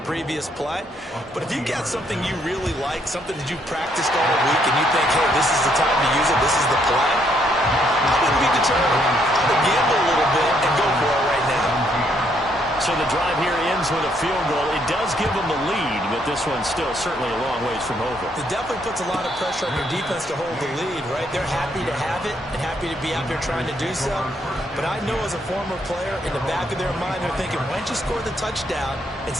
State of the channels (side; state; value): both; normal; correlation 0.71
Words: previous play. But if you got something you really like, something that you've practiced all week, and you think, hey, this is the time to use it, this is the play, I wouldn't be deterred. I would gamble a little bit and go for it right now. So the drive here ends with a field goal. It does give them the lead, but this one's still certainly a long ways from over. It definitely puts a lot of pressure on your defense to hold the lead, right? They're happy to have it and happy to be out there trying to do so. But I know as a former player, in the back of their mind, they're thinking, why don't you score the touchdown and